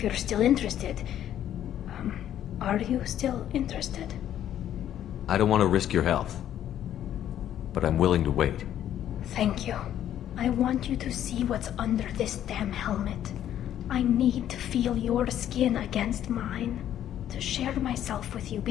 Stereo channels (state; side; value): quieter; right; 11.1 dB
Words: you're still interested. Are you still interested? I don't want to risk your health, but I'm willing to wait. Thank you. I want you to see what's under this damn helmet. I need to feel your skin against mine, to share myself with you